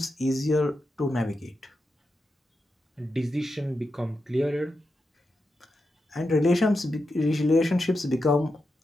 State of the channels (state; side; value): normal; both; correlation 0.88